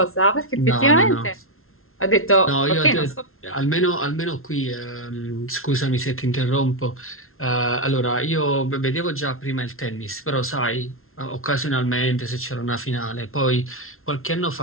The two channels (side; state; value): right; late; 0.62 ms